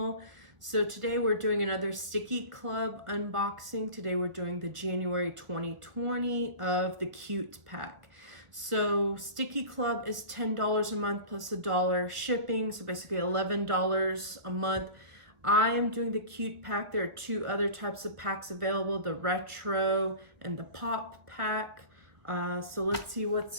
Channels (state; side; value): late; left; 1.2 ms